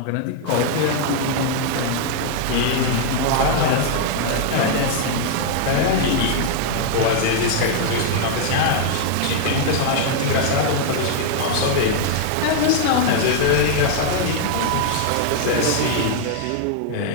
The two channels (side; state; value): both; different; correlation 0.00